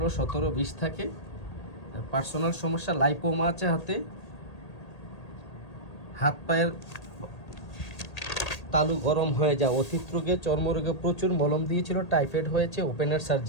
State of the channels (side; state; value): right; late; 1.8 ms